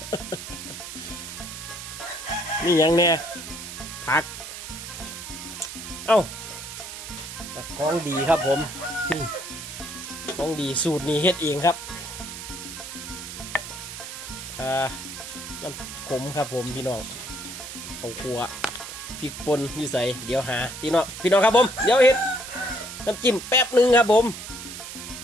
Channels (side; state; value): right; noise; hiss, 10 dB below the sound